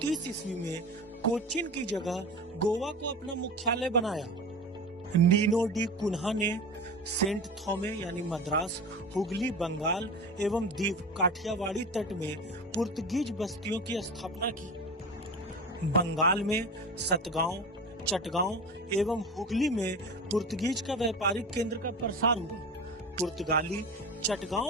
ईस्वी में कोचीन की जगह गोवा को अपना मुख्यालय बनाया। नीनो डी कुन्हा ने सेंट थॉमे यानी मद्रास, हुगली, बंगाल एवं दीव काठियावाड़ी तट में पुर्तगीज बस्तियों की स्थापना की। बंगाल में सतगांव, चटगांव एवं हुगली में पुर्तगीज का व्यापारिक केंद्र का प्रसार हुआ। पुर्तगाली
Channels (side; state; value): both; normal; correlation 0.31